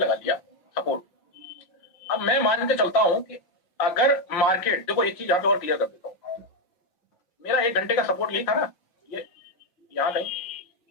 लिया सपोर्ट। अब मैं मान के चलता हूं कि अगर मार्केट, देखो एक चीज यहाँ पे और क्लियर कर देता हूं, मेरा 1 घंटे का सपोर्ट यही था ना, ये यहाँ कहीं,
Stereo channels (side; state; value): right; late; 5.6 ms